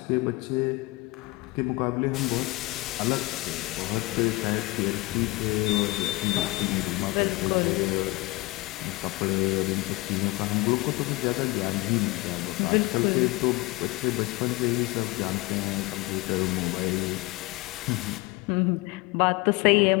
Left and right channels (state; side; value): quieter; right; 22.3 dB